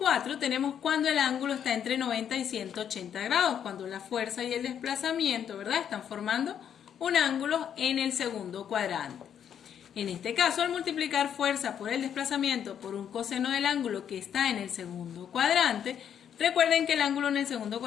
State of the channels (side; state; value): right; quieter; 8.8 dB